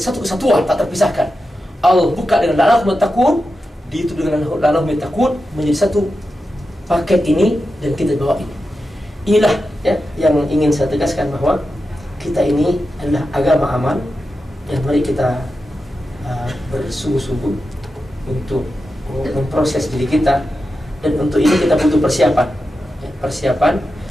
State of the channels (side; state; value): both; normal; correlation 0.90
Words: kesatuan tak terpisahkan. Allah buka dengan la'allahum yattaqun, diitup dengan la'allahum yattaqun, menjadi satu paket ini dan kita bawa ini. Inilah ya yang ingin saya tegaskan, bahwa kita ini adalah agama aman, dan mari kita bersungguh-sungguh untuk memproses diri kita, dan untuk ini kita butuh persiapan ya, persiapan.